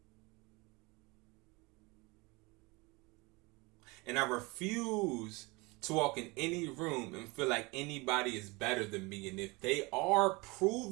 And I refuse to walk in any room and feel like anybody is better than me. And if they are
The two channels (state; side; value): quieter; left; 25.5 dB